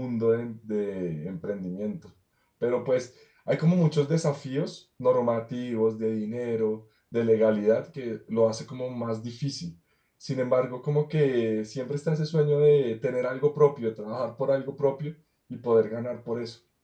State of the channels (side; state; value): both; identical; correlation 1.00